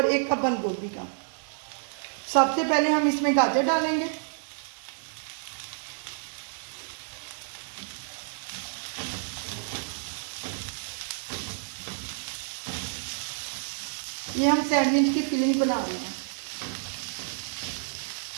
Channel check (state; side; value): silent; left; digital silence